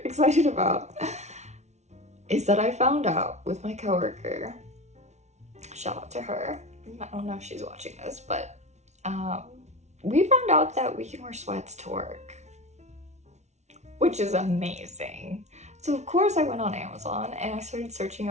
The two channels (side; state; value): left; late; 0.32 ms